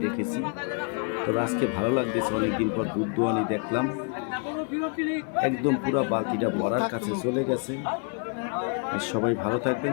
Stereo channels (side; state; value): right; quieter; 37.4 dB